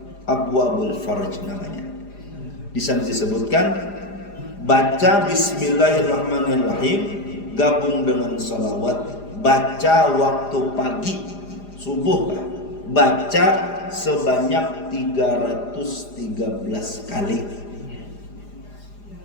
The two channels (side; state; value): right; late; 4.9 ms